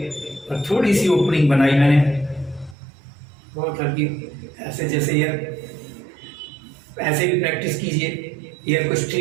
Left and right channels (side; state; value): left; drops out; at 2.8 s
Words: और थोड़ी सी ओपनिंग बनाई मैंने बहुत हल्की, ऐसे जैसे एयर, ऐसे भी प्रैक्टिस कीजिए एयर को